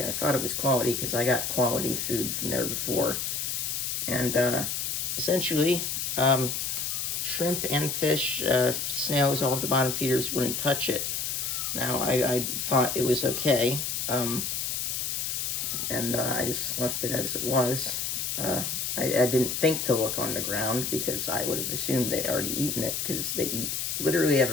thought it was quality because I got quality food from there before. And, essentially, shrimp and fish, snails, all of the bottom feeders wouldn't touch it. Now, I thought it was okay, and I just left it as it was. I didn't think to look on the ground because I would have assumed they'd already eaten it because they eat literally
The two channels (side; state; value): left; noise; hiss, 1 dB below the sound